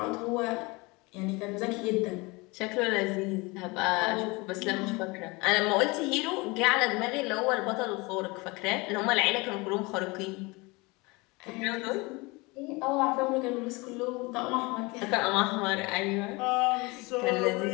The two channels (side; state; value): right; quieter; 25.3 dB